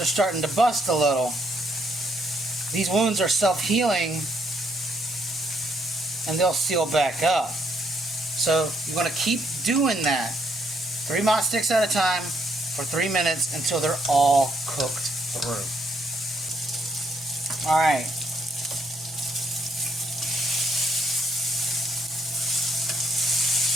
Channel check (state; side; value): normal; both; correlation 0.72